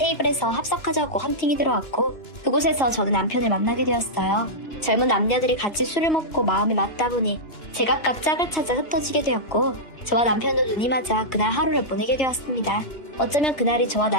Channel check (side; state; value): right; late; 2.9 ms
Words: 합석하자고 헌팅이 들어왔고, 그곳에서 저는 남편을 만나게 되었어요. 젊은 남녀들이 같이 술을 먹고 마음이 맞다 보니 제각각 짝을 찾아 흩어지게 되었고, 저와 남편도 눈이 맞아 그날 하루를 보내게 되었습니다. 어쩌면 그날이 저와